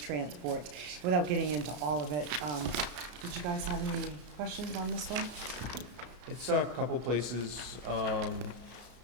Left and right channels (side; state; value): left; late; 33 ms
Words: Without getting into all of it, did you guys have any questions on this one? It's a couple places